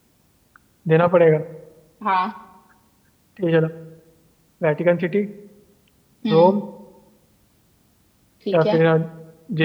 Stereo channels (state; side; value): identical; both; correlation 1.00